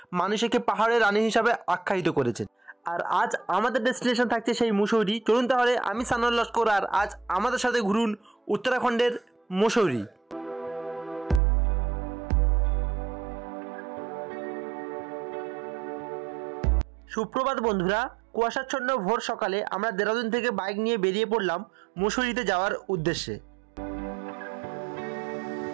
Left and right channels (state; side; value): drops out; left; at 11.4 s